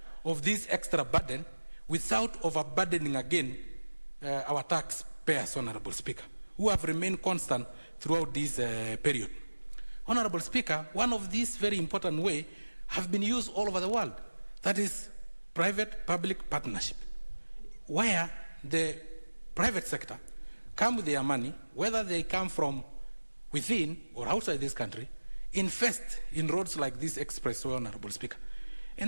of this extra burden without overburdening again our taxpayers, Honorable Speaker, who have remained constant throughout this period. Honorable Speaker, one of these very important ways have been used all over the world. That is private-public partnership, where the private sector come with their money, whether they come from within or outside this country, invest in roads like this expressway, Honorable Speaker.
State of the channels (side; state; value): both; inverted; correlation -1.00